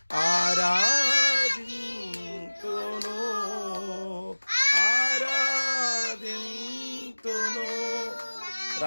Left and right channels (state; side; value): inverted; both; correlation -1.00